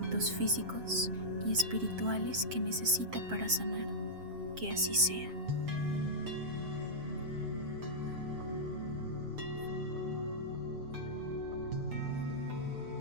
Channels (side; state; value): left; late; 7.6 ms